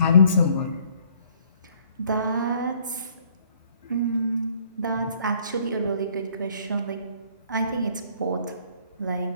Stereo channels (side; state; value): both; inverted; correlation -0.61